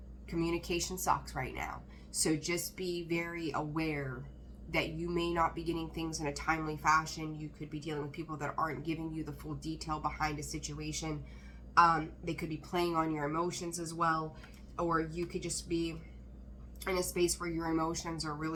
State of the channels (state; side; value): identical; both; correlation 1.00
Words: Communication sucks right now. So just be very aware that you may not be getting things in a timely fashion. You could be dealing with people that aren't giving you the full detail behind a situation. They could be playing on your emotions as well. Or you could just be in a space where your emotions are